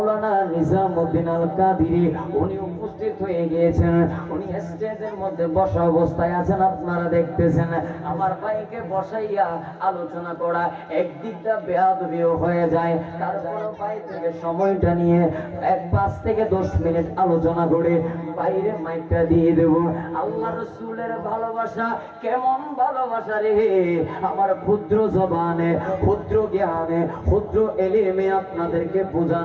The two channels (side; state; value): both; identical; correlation 1.00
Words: নিজামউদ্দিন আল কাদিরি, উনি উপস্থিত হয়ে গিয়েছেন। উনি স্টেজের মধ্যে বসা অবস্থায় আছেন, আপনারা দেখতেছেন। আমার ভাইকে বসাইয়া আলোচনা করা একদিকটা বেয়াদবিও হয়ে যায়, তারপর ভাই থেকে সময়টা নিয়ে 5 থেকে 10 মিনিট আলোচনা করে বাইরে মাইকটা দিয়ে দেব। আল্লাহ রসুলের ভালোবাসা কেমন ভালোবাসা রে, আমার ক্ষুদ্র জবানে, ক্ষুদ্র জ্ঞানে, ক্ষুদ্র এলিমে আপনাদেরকে